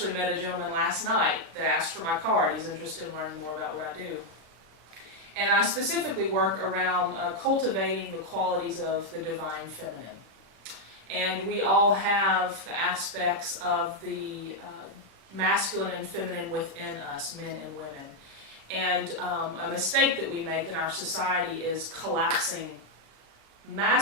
met a gentleman last night that asked for my card. He's interested in learning more about what I do. And I specifically work around cultivating the qualities of the divine feminine. And we all have the aspects of the masculine and feminine within us, men and women. And a mistake that we make in our society is collapsing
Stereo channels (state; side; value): late; left; 36 ms